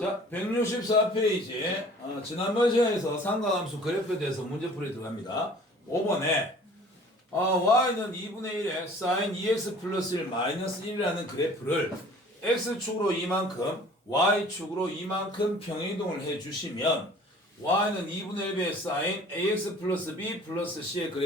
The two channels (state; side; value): normal; both; correlation 0.49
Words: 164페이지. 지난번 시간에서 삼각함수 그래프에 대해서 문제풀이 들어갑니다. 5번에 y는 2분의 1에 sin 2x 플러스 1 마이너스 1이라는 그래프를 x축으로 이만큼, y축으로 이만큼 평행이동을 해주시면 y는 2분의 1의 sin ax 플러스 b 플러스 c의